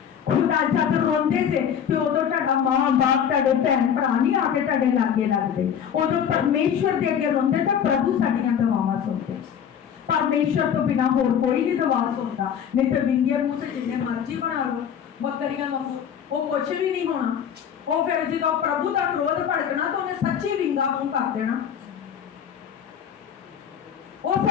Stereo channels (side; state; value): right; quieter; 8.4 dB